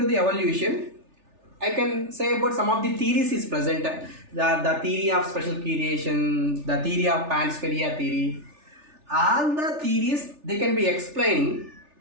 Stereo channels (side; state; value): left; late; 3.4 ms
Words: the evolution, I can say about some of the theories is present. The theory of special creation, the theory of panspermia theory, all the theories they can be explaining,